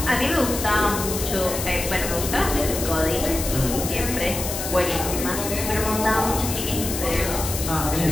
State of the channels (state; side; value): noise; left; hiss, 5 dB below the sound